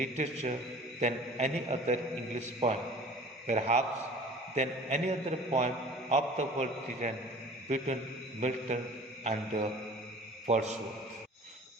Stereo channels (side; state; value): both; normal; correlation 0.45